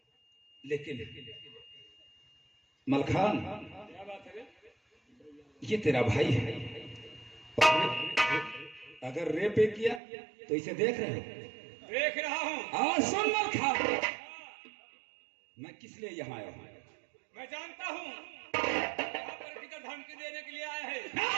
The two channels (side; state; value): left; drops out; at 10.0 s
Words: लेकिन मलखान ये तेरा भाई है और अगर रेप किया तो इसे देख रहे हो? देख रहा हूँ। और सुन मलखान, मैं किस लिए यहाँ आया हूँ? मैं जानता हूँ यहाँ पर किधर धमकी देने के लिए आया है।